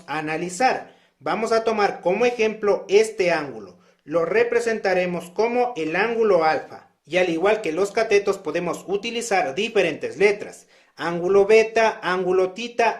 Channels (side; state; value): both; identical; correlation 1.00